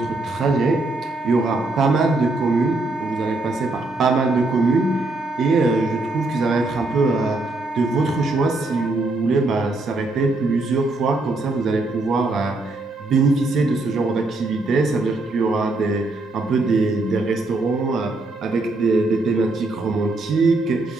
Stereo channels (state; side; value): quieter; left; 3.0 dB